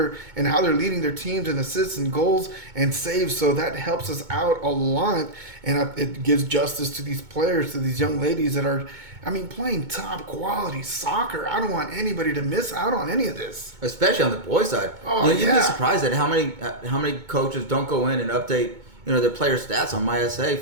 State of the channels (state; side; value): late; left; 2.2 ms